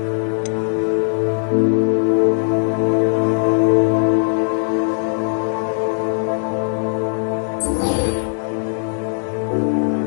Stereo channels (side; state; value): right; silent; digital silence